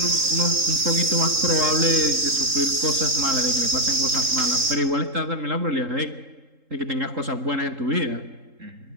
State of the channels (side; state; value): left; late; 3.8 ms